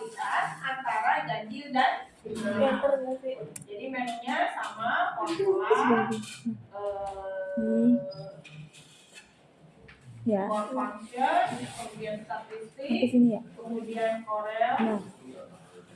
antara ganjil dan genap. Enter nggak sih? Jadi menunya sama formula ini ya for function, kemudian sampai statistik, sini ya. kemudian Corel. Nah,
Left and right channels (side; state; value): both; identical; correlation 1.00